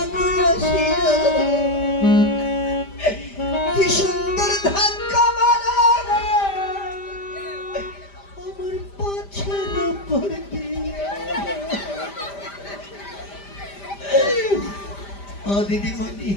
কি সুন্দর ধাক্কা মারা আমার পাছের উপর দিয়ে। ও দিদিমণি,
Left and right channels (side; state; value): right; late; 5.0 ms